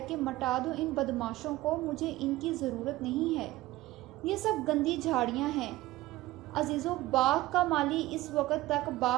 کہ مٹا دو ان بدماشوں کو، مجھے ان کی ضرورت نہیں ہے۔ یہ سب گندی جھاڑیاں ہیں۔ عزیزوں، باغ کا مالی اس وقت تک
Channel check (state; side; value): quieter; left; 17.4 dB